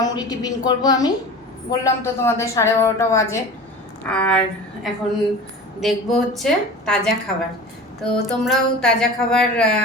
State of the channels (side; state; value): both; normal; correlation 0.36